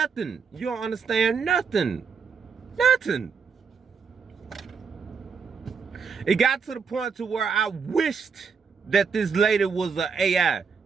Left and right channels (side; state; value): left; quieter; 5.8 dB